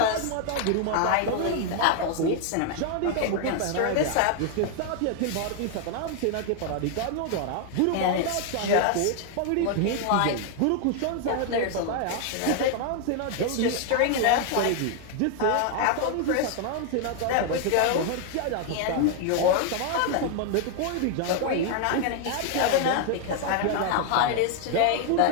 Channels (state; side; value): different; both; correlation 0.00